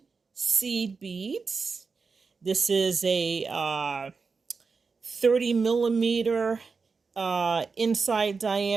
seed beads. This is a 30 millimeter inside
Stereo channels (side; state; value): left; quieter; 4.8 dB